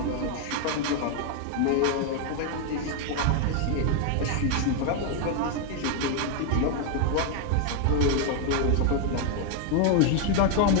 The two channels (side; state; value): both; different; correlation 0.00